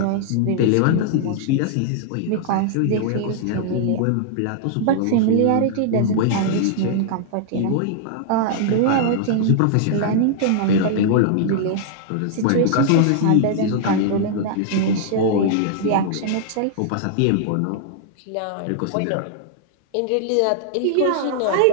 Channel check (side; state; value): both; different; correlation -0.01